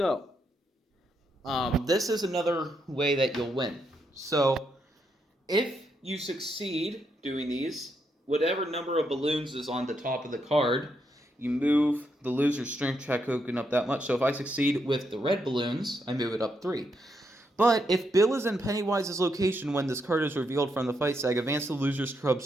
this is another way that you'll win. So if you succeed doing these, whatever number of balloons is on the top of the card, you move the loser's strength check token up that much. So if I succeed with the red balloons, I move it up 3. But if Bill is in Pennywise's location when this card is revealed from the fight sag, advance the loser's club's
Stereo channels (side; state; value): both; normal; correlation 0.79